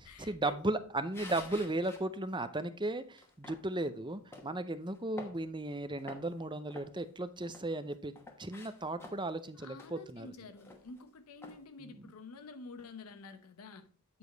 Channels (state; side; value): normal; both; correlation 0.53